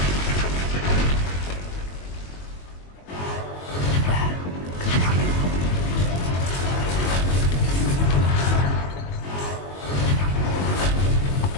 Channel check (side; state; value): right; late; 22 ms